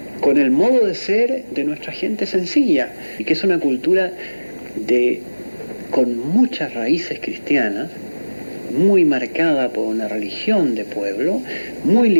con el modo de ser de nuestra gente sencilla, y que es una cultura con muchas raíces cristianas, muy marcada por una religión de pueblo, muy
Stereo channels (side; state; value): both; inverted; correlation -1.00